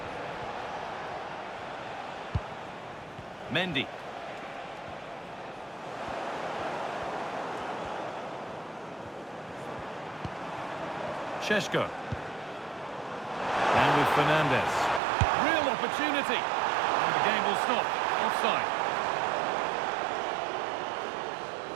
Mendy. Šeško. And with Fernandez. Real opportunity. And the game will stop. Offside.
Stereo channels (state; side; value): drops out; left; at 15.0 s